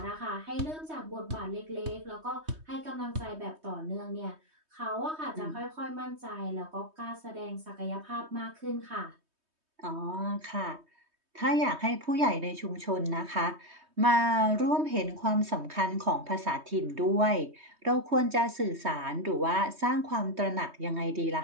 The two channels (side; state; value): left; late; 3.2 ms